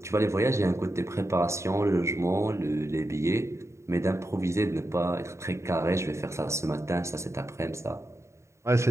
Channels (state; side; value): late; left; 0.14 ms